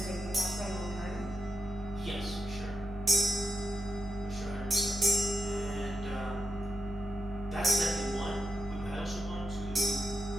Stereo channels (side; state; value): both; normal; correlation 0.87